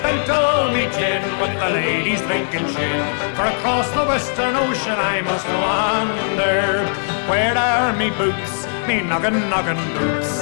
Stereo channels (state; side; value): silent; right; digital silence